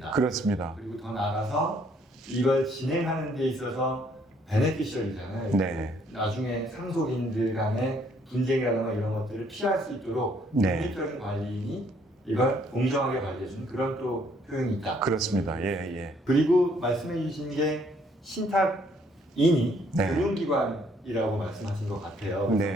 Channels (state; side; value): normal; both; correlation 0.65